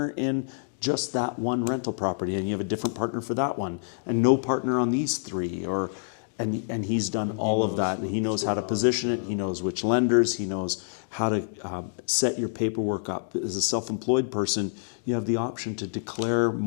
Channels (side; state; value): right; silent; digital silence